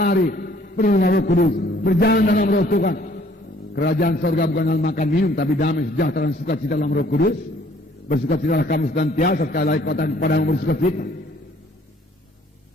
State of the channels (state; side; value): normal; both; correlation 0.60